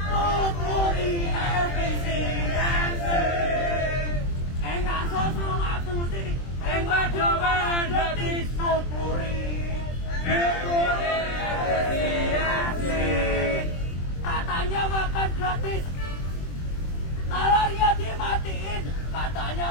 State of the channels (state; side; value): late; right; 23 ms